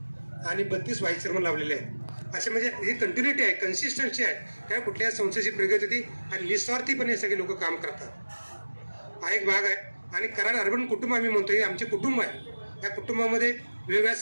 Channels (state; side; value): inverted; both; correlation -1.00